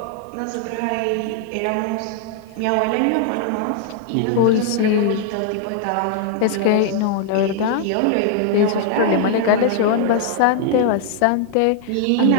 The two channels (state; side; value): different; both; correlation -0.01